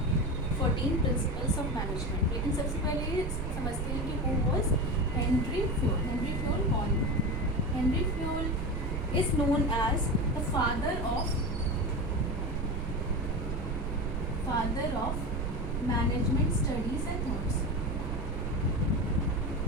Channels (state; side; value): noise; right; rumble, 2 dB below the sound